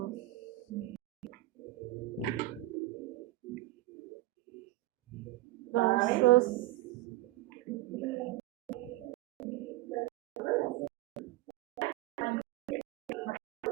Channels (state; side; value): quieter; left; 17.2 dB